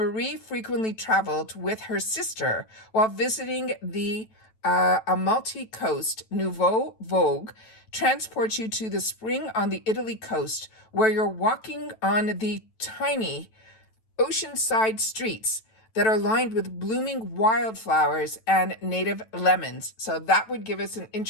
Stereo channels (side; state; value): right; late; 9.1 ms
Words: frequently traveled with her sister while visiting the Amalfi Coast. Nouveau Vogue transports you to the spring on the Italy coast, where you're walking on the tiny oceanside streets that are lined with blooming wildflowers and native lemons. So that would give us an